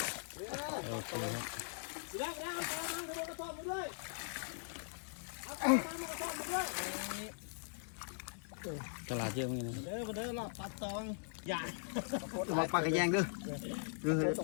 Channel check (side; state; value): right; silent; digital silence